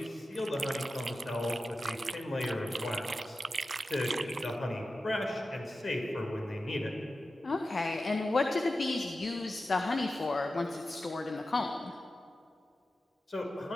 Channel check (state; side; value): normal; both; correlation 0.93